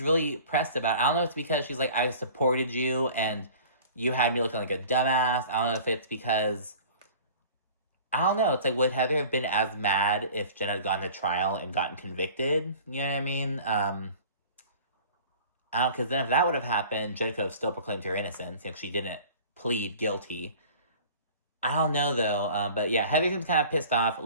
really pressed about it. I don't know if it's because she's like, I supported you and you had me looking like a dumbass. I don't know if it's because, I don't know. It's like, would Heather have been as mad if Jen had gone to trial and gotten convicted? You know what I mean? I don't, because then if that would have happened, Jen could have still proclaimed her innocence, you know, she didn't plead guilty. I don't know, though. But yeah, Heather seems kind of pissed off.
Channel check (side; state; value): both; inverted; correlation -0.45